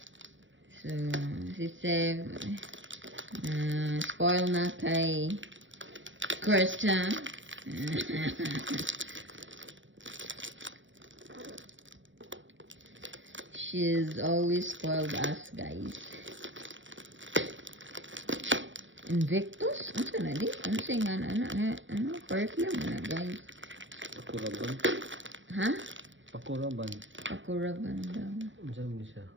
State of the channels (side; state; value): left; late; 0.56 ms